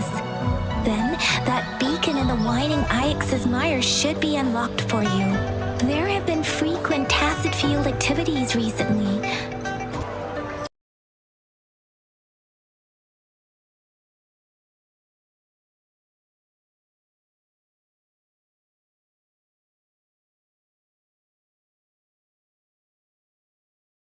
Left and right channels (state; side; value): identical; both; correlation 1.00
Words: Then, that beacon in the Whining Ix's mire should be unlocked for you. There have been frequent tacit field activities recently.